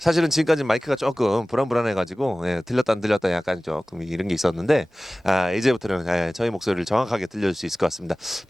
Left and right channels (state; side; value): normal; both; correlation 0.98